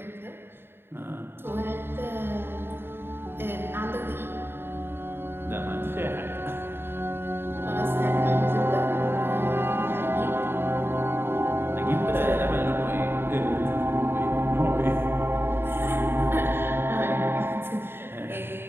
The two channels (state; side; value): late; left; 0.11 ms